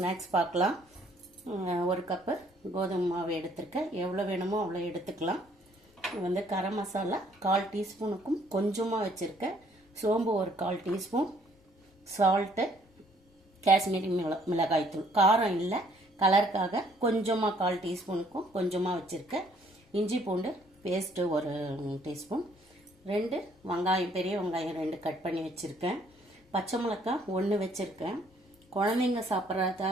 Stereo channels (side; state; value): both; normal; correlation 0.63